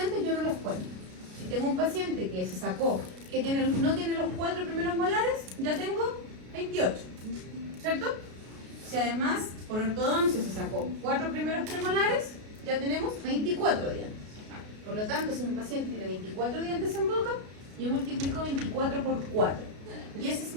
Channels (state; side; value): late; left; 33 ms